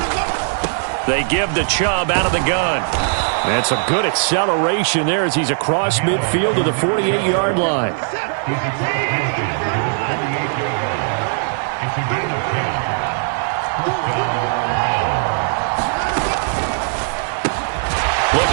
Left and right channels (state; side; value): silent; left; 60 dB below the other